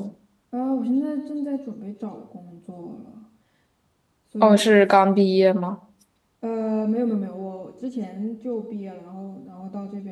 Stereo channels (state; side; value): identical; both; correlation 1.00